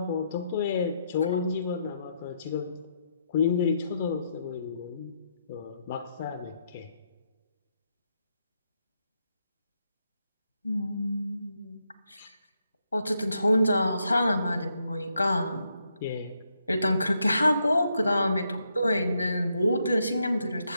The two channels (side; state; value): both; inverted; correlation -0.78